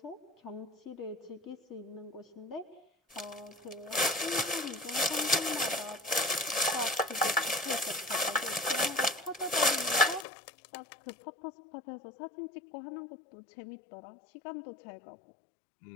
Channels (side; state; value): right; drops out; at 10.2 s